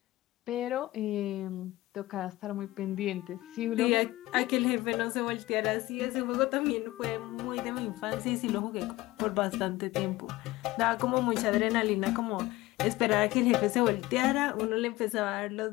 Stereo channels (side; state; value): right; quieter; 18.4 dB